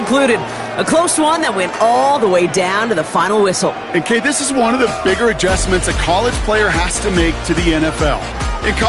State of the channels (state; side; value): identical; both; correlation 1.00